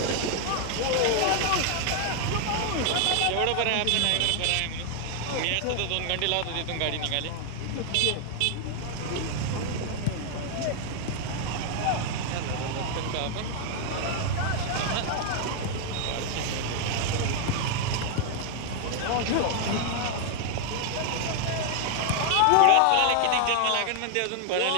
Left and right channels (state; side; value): different; both; correlation 0.00